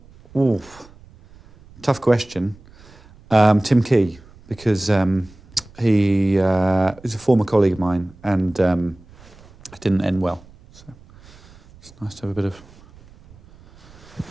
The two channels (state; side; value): noise; right; rumble, 24 dB below the sound